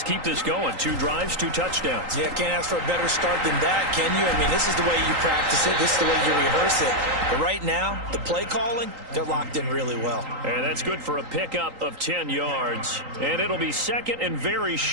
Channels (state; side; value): late; left; 3.8 ms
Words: keep this going. 2 drives, 2 touchdowns. Yeah, can't ask for a better start than that, can you? I mean, this is the way you practice it. This is the way you rehearse it. But right now, the play calling, they're locked in really well. And that's good for a pickup of 10 yards. And it'll be second and very